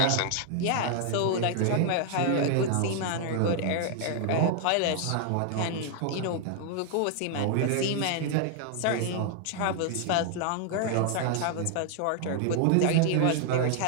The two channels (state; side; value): different; both; correlation 0.00